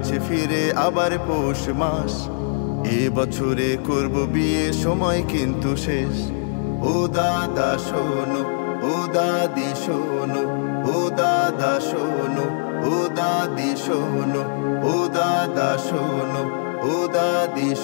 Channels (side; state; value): right; silent; 64 dB below the other